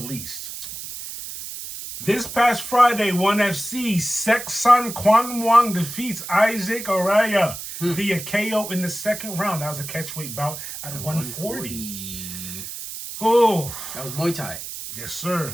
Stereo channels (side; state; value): right; noise; hiss, 9 dB below the sound